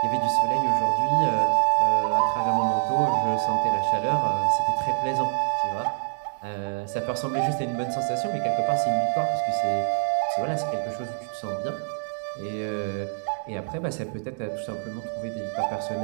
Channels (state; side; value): silent; left; digital silence